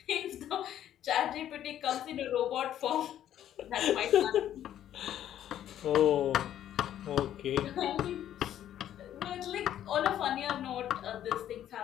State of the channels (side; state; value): right; quieter; 11.2 dB